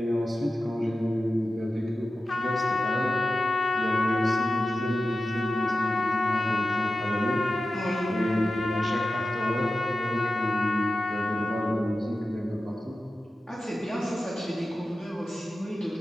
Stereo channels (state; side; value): normal; both; correlation 0.93